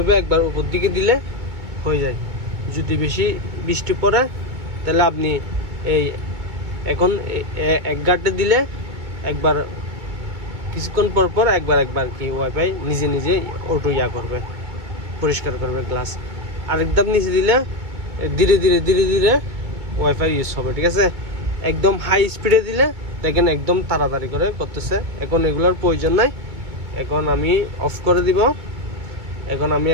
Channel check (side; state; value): left; late; 2.2 ms